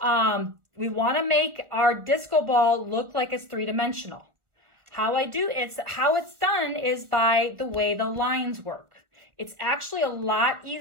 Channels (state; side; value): late; left; 1.2 ms